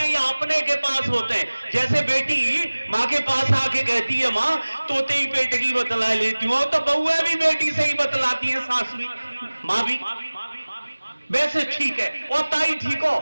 या अपने के पास होते हैं, जैसे बेटी माँ के पास आके कहती है, माँ तोते ही पेट की बतला लेती हूँ, तो बहुएं भी बेटी से ही बतलाती है, सास भी, माँ भी, वैसे ठीक है। और ताई ठीक हो,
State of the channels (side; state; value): both; inverted; correlation -1.00